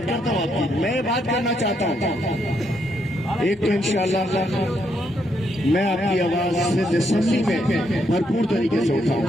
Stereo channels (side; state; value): both; normal; correlation 0.76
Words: करता हूँ आपकी, मैं बात करना चाहता हूँ एक तो इंशाअल्लाह मैं आपकी आवाज सिंध असेंबली में भरपूर तरीके से